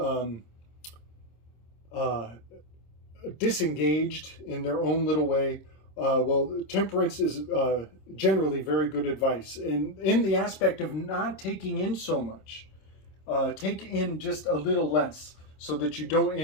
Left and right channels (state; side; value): late; right; 26 ms